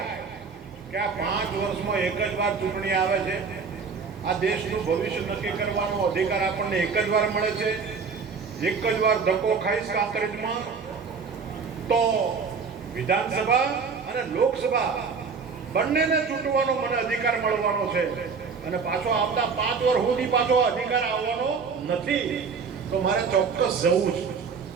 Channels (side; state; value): left; quieter; 5.4 dB